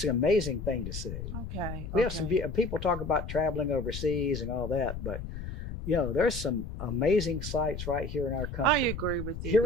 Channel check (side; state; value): left; noise; rumble, 7 dB below the sound